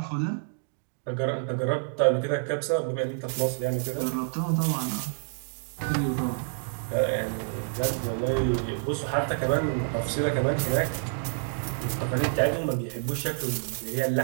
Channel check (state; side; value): silent; left; 59 dB below the other